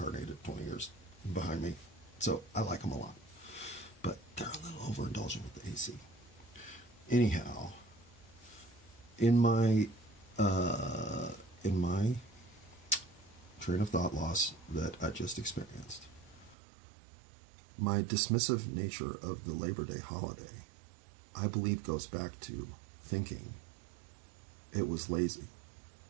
20 years behind me. So I like them a lot. But they're a little overindulgent with the AC. Anyhow, in my train of thought loss that I just experienced, my dismissive nature of the Labor Day holiday, I believe, goes back to thinking it was lazy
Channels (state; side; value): drops out; left; at 16.6 s